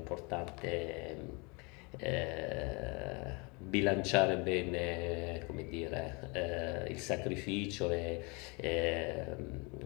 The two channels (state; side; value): quieter; right; 29.6 dB